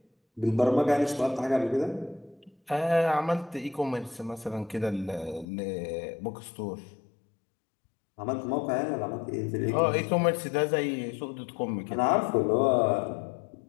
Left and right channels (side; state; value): right; drops out; at 5.5 s